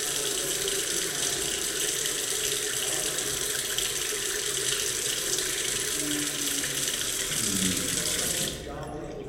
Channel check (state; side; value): identical; both; correlation 1.00